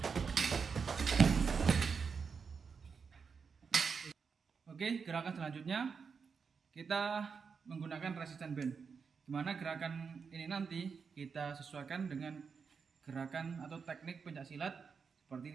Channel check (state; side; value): quieter; left; 5.7 dB